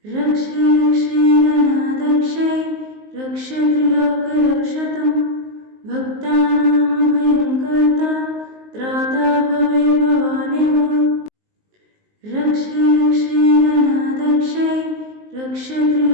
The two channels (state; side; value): late; left; 19 ms